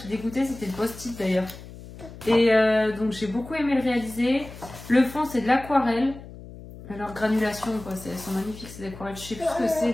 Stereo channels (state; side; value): noise; left; hum, 15 dB below the sound